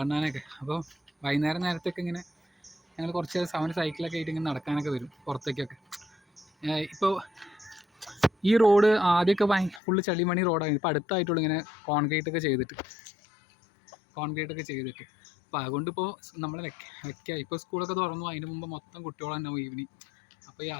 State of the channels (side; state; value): right; drops out; at 9.8 s